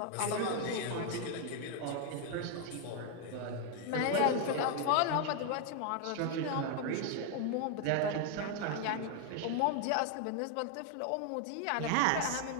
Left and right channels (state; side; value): different; both; correlation 0.01